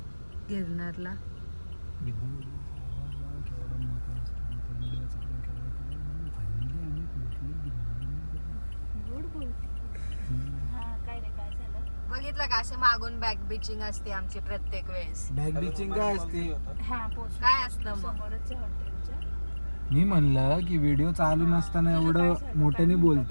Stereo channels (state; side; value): inverted; both; correlation -1.00